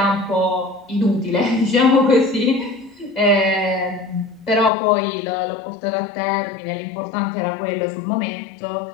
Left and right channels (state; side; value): drops out; right; at 4.7 s